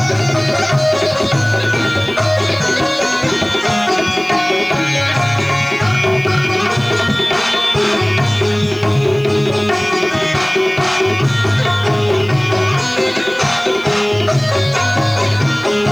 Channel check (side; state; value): right; noise; hiss, 27 dB below the sound